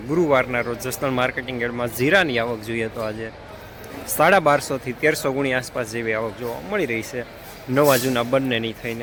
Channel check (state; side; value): identical; both; correlation 1.00